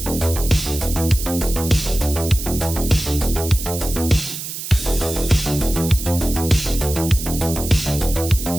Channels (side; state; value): right; noise; hiss, 8 dB below the sound